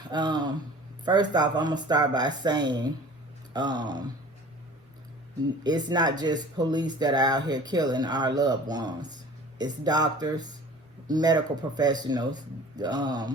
first off, I'm going to start by saying it's not just police that are out here killing our loved ones. It's doctors, medical professionals,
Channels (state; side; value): normal; both; correlation 0.44